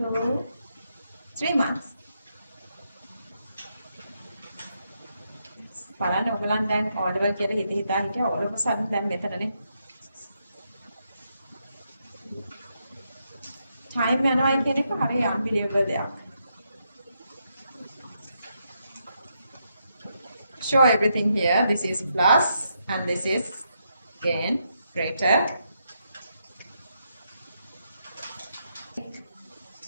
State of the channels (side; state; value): both; inverted; correlation -0.80